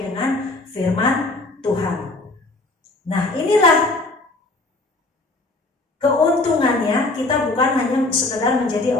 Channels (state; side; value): quieter; right; 3.0 dB